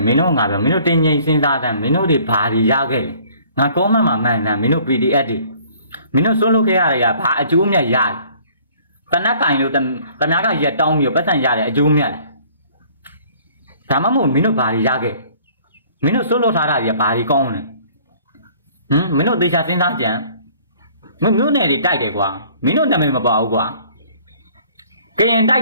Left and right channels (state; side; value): inverted; both; correlation -0.55